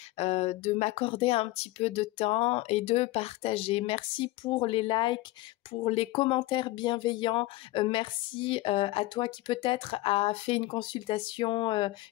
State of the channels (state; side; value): quieter; right; 18.6 dB